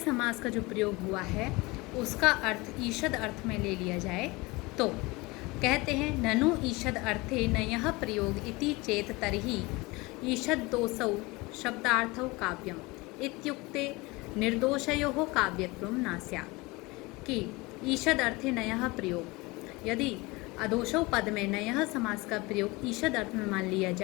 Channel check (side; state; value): right; quieter; 23.6 dB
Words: का जो प्रयोग हुआ है उसका अर्थ ईषद अर्थ में ले लिया जाए तो कहते हैं ननु ईषद अर्थे नयः प्रयोग इति चेत तर्हि ईषद दोषौ शब्दार्थौ काव्यम इत्युक्ते निर्दोषयोः काव्यत्वं न स्यात्। कि ईषद अर्थे नयः प्रयोग, यदि अदोषौ पद में नयः समास का प्रयोग ईषद अर्थ में मान लिया